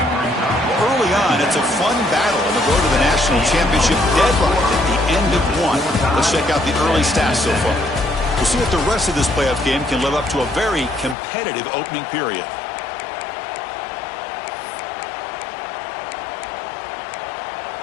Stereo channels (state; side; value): drops out; right; at 11.2 s